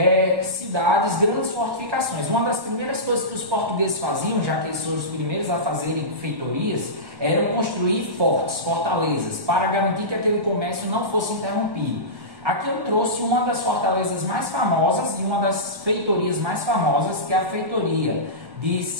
cidades, grandes fortificações. Uma das primeiras coisas que os portugueses faziam, já que eles foram os primeiros a fazerem feitorias, era construir fortes, fortalezas, para garantir que aquele comércio não fosse interrompido. Aqui eu trouxe uma das fortalezas mais famosas e uma das feitorias mais famosas, que é a feitoria de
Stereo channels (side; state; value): left; late; 1.5 ms